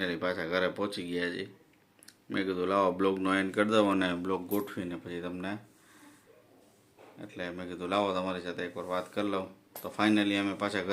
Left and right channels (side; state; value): both; identical; correlation 1.00